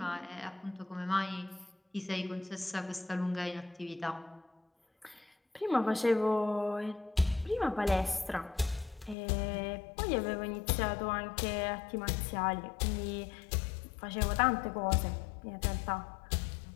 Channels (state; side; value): drops out; right; at 9.2 s